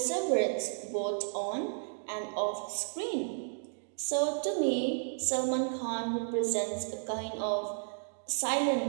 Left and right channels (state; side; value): silent; left; digital silence